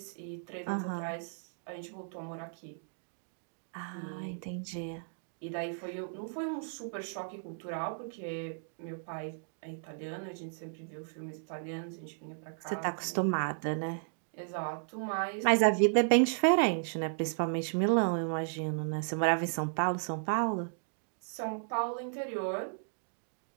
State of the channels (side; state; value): left; silent; digital silence